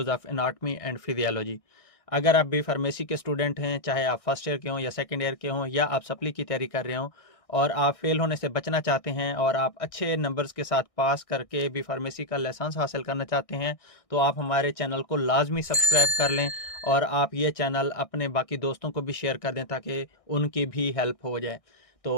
of anatomy and physiology. अगर आप बी फार्मेसी के स्टूडेंट हैं, चाहे आप फर्स्ट ईयर के हों या सेकंड ईयर के हों या आप सप्ली की तैयारी कर रहे हों और आप फेल होने से बचना चाहते हैं और आप अच्छे नंबर्स के साथ पास करके बी फार्मेसी का लाइसेंस हासिल करना चाहते हैं, तो आप हमारे चैनल को लाजमी सब्सक्राइब कर लें और आप ये चैनल अपने बाकी दोस्तों को भी शेयर कर दें ताकि उनकी भी हेल्प हो जाए।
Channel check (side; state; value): right; late; 1.6 ms